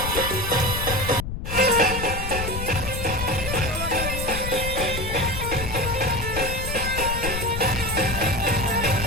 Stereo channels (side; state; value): left; noise; rumble, 5 dB below the sound